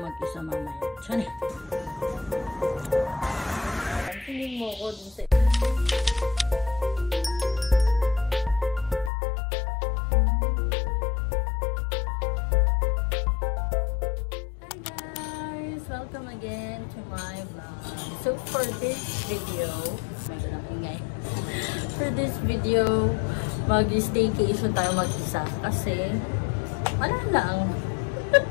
mag-isa mamaya? Tiyan eh. Tingin mo ko dun sa... Hi guys! Welcome again to my vlog. So, for this video... For this video, mag-staycation tayo mag-isa kasi wala lang.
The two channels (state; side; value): drops out; right; at 9.1 s